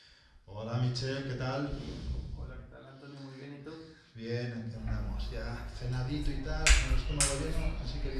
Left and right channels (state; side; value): identical; both; correlation 1.00